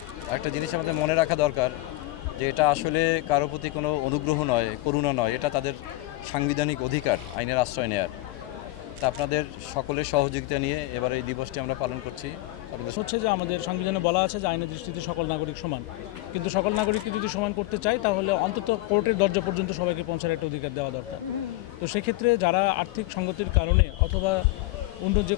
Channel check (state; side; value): quieter; right; 18.6 dB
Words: একটা জিনিস আমাদের মনে রাখা দরকার যে এটা আসলে কারো প্রতি কোনো অনুগ্রহ নয়, করুণা নয়, এটা তাদের সাংবিধানিক অধিকার আইনের আশ্রয় নেওয়ার। তা আপনাদের সকলের সহযোগিতা নিয়ে এবার এই দিবসটি আমরা পালন করছি। হচ্ছে যে আমাদের সংবিধানে বলা আছে যে আইনের দৃষ্টিতে সকল নাগরিক সমান, কিন্তু সকল নাগরিককে যদি সমান করতে চাই তাহলে অন্তত কোর্টের দরজা পর্যন্ত সবাইকে পৌঁছার একটা অধিকার দেওয়া দরকার। তো সেক্ষেত্রে যারা আর্থিক সংগতির কারণে অথবা অন্য যে